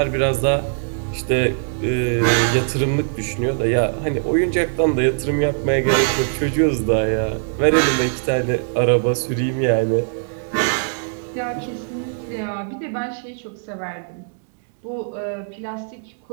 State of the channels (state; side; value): silent; left; 62 dB below the other